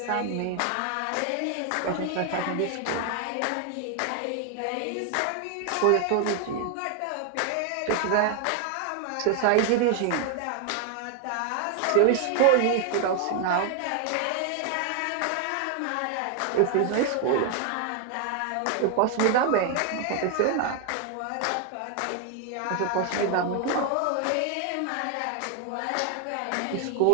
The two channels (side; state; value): both; different; correlation 0.00